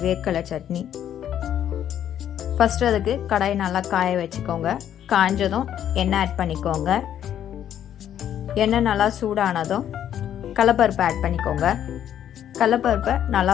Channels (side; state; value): right; quieter; 10.3 dB